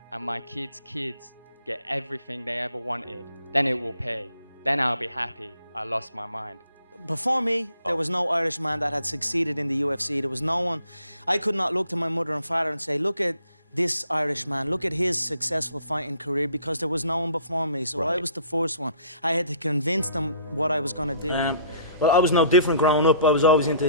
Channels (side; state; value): both; inverted; correlation -0.57